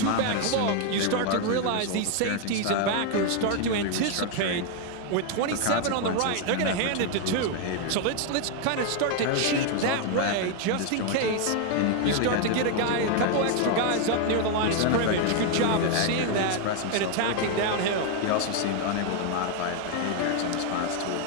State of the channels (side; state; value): both; different; correlation 0.01